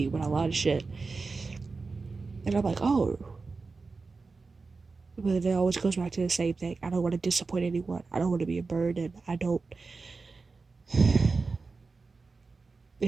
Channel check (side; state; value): left; quieter; 4.2 dB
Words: with a lot of shit. And I'm like, oh. But it always goes back to the same thing. I don't want to disappoint anyone. I don't want to be a burden. I don't.